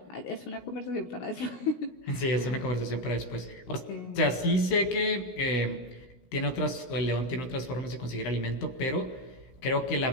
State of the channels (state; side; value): late; right; 16 ms